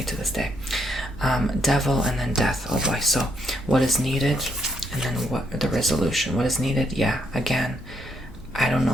to this day. Devil and then death. Oh boy. So what is needed? And then what the resolution. What is needed? Yeah. Again, I don't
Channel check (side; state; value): both; normal; correlation 0.75